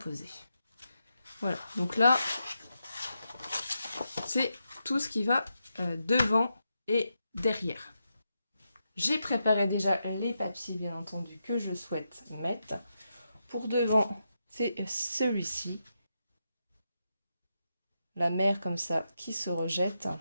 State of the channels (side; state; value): both; inverted; correlation -0.86